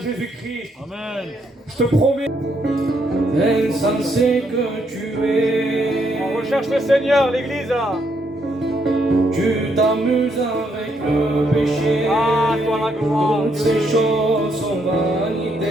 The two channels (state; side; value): normal; both; correlation 0.74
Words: Amen. Je te promets. Insensé que tu es, On recherche le Seigneur, l'église là. tu t'amuses avec le péché. Ah, toi la gloire. Toutes ces choses sont